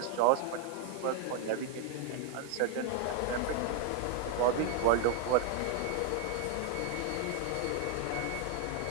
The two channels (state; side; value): different; both; correlation 0.00